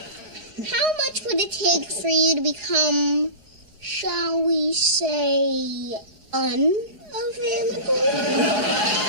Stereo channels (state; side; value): late; left; 4.8 ms